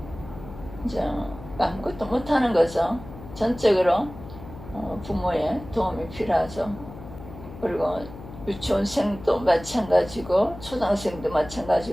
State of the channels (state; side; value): noise; left; hum, 14 dB below the sound